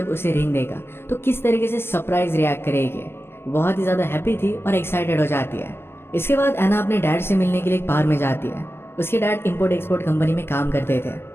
उसे रिंग देगा तो किस तरीके से सरप्राइज रिएक्ट करेगी। बहुत ही ज्यादा हैप्पी थी और एक्साइटेड हो जाती है। इसके बाद एना अपने डैड से मिलने के लिए एक बार में जाती है। उसके डैड इंपोर्ट एक्सपोर्ट कंपनी में काम करते थे।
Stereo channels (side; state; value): right; late; 0.11 ms